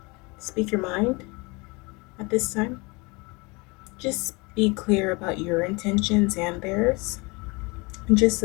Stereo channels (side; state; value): right; quieter; 27.1 dB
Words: your mind at this time. Just be clear about your intentions and theirs. And just